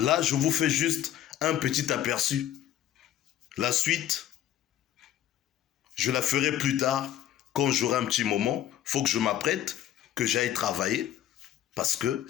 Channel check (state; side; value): quieter; right; 11.7 dB